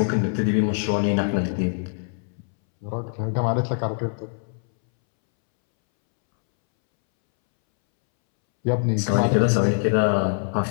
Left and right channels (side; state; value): right; silent; 63 dB below the other